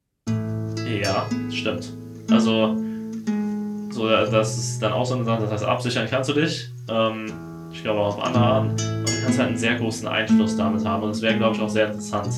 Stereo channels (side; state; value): both; identical; correlation 1.00